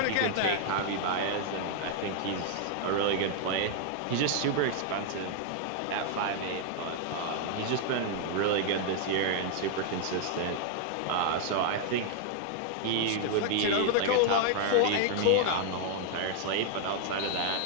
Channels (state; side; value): different; both; correlation 0.00